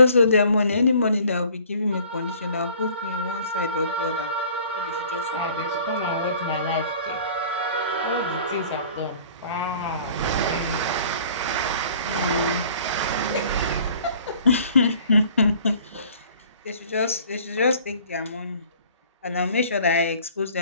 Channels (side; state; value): both; inverted; correlation -0.52